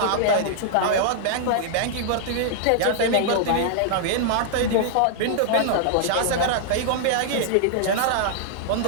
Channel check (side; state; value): both; different; correlation -0.01